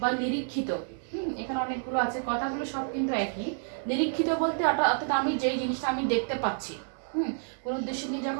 নিরীক্ষিত, এখানে অনেকগুলো আছে, কথাগুলো সব কিন্তু একই। নিরীক্ষিত বলতে অর্থাৎ আমি যেই জিনিসটা আমি দেখতে পাচ্ছি, কোনো উদ্দেশ্য নিয়ে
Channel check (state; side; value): silent; left; 58 dB below the other